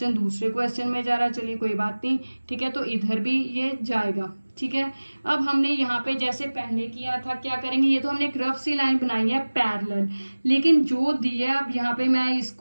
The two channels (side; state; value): both; inverted; correlation -1.00